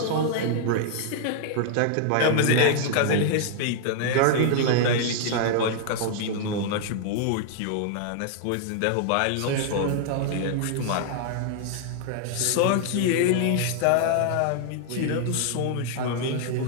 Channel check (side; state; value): both; different; correlation -0.01